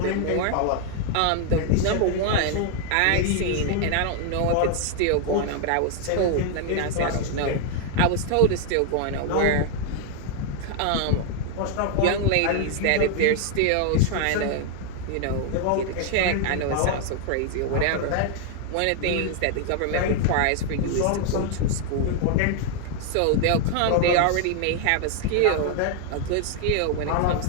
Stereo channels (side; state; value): both; different; correlation 0.00